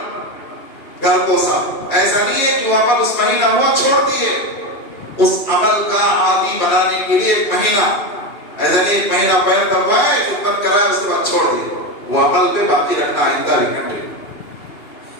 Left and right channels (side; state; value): right; late; 2.8 ms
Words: گھر کو صاف. ایسا نہیں ہے کہ وہ عمل اس مہینہ ہوا چھوڑ دیے. اس عمل کا عادی بنانے کے لیے ایک مہینہ, ایسا نہیں ایک مہینہ پیر دبائے, خدمت کرائے, اس کے بعد چھوڑ دیے. وہ عمل پہ باقی رکھنا آئندہ بھی کنٹینیو.